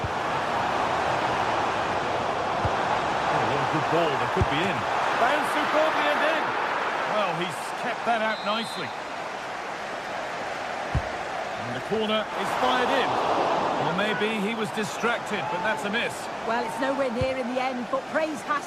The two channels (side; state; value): both; identical; correlation 1.00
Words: Oh, what a good ball, that could be in. Bounced superbly and in. Well, he's kept that out nicely. And the corner is fired in. Or maybe he was distracted, but that's a miss. Well, it's nowhere near in the end, but praise has